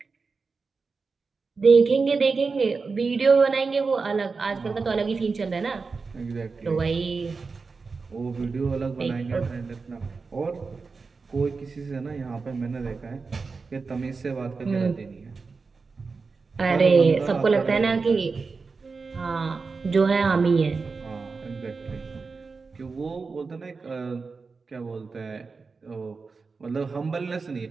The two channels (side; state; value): left; quieter; 4.5 dB